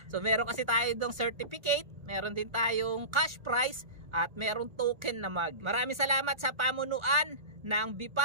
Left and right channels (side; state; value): left; late; 1.3 ms